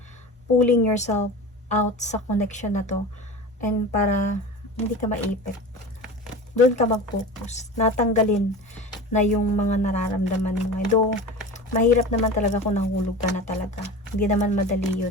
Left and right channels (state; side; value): normal; both; correlation 0.32